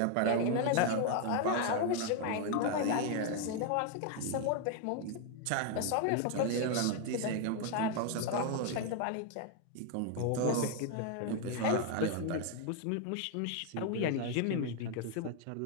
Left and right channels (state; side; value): different; both; correlation 0.00